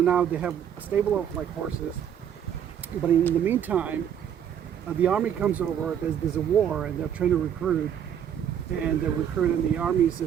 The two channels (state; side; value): quieter; left; 9.1 dB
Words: they have a stable of like horses. But in the meantime, the army comes over. There's a war, and they're trying to recruit. And the recruit in the army